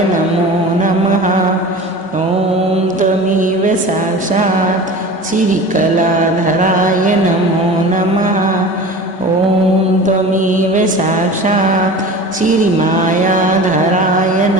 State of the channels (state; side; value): normal; both; correlation 0.36